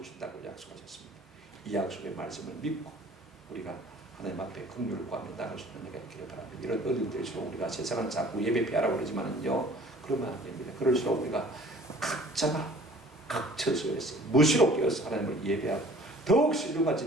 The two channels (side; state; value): both; normal; correlation 0.50